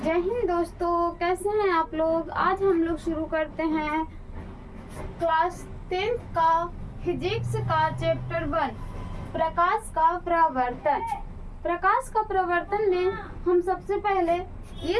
जय हिंद दोस्तों, कैसे हैं आप लोग। आज हम लोग शुरू करते हैं क्लास 10th का फिजिक्स का चैप्टर 1 प्रकाश का प्रवर्तन। प्रकाश का प्रवर्तन में हम सबसे पहले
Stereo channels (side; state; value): both; identical; correlation 1.00